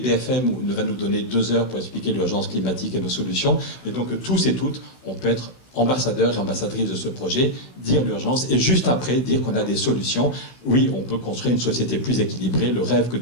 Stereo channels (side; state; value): right; late; 15 ms